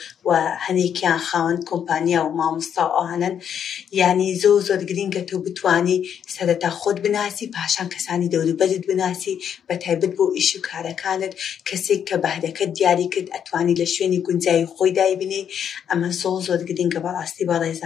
و هەنێکیان خاوەن کۆمپانیا و مامۆستا و ئەوانن. یعنی زۆر گرینگە تۆ بتوانی سەرەتا خۆت بناسی، پاشان کەسانی دەوروبەرت بناسی، بە تایبەت بۆ ئیش و کارەکانت کەسێک کە بەهرەکەت دیاری کرد ئەتوانی لە شوێنی گونجایی خۆی دایبنی. ئەمە زۆر گرینگە بەڕاستی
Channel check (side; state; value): right; quieter; 8.5 dB